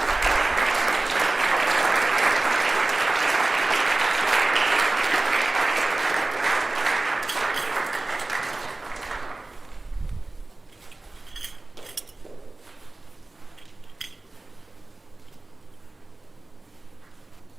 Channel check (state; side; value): quieter; left; 3.0 dB